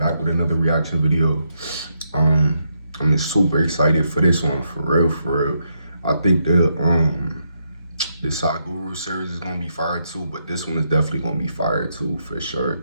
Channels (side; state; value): both; inverted; correlation -0.79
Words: with another reaction video. I'm super excited for this one, for real. I think the Sakura series is gonna be fire too, but this one is definitely gonna be fire too, for sure,